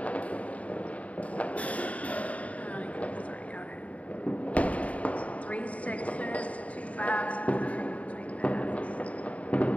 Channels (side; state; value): right; late; 0.067 ms